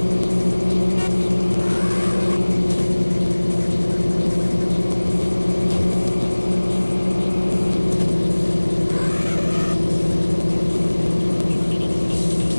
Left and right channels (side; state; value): both; inverted; correlation -1.00